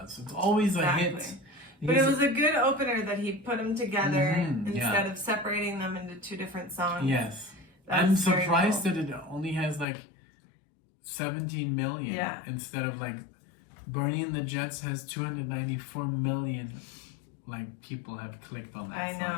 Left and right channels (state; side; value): drops out; right; at 9.9 s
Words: It's always a hit. But it was a good opener that he put them together instead of separating them into two different songs. Yes, I'm surprised that it only has like 17 million instead of like Bernie and the Jets has 294 million like people have clicked on that I song.